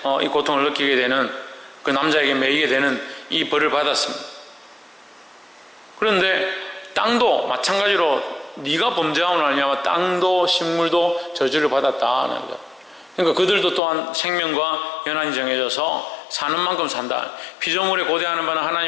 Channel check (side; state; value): right; drops out; at 13.8 s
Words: 이 고통을 느끼게 되는 그 남자에게 매이게 되는 이 벌을 받았습니다. 그런데 땅도 마찬가지로 네가 범죄함으로 말미암아 땅도 식물도 저주를 받았다는 거죠. 그러니까 그들도 또한 생명과 연한이 정해져서 사는 만큼 산다. 피조물에 고대하는 바는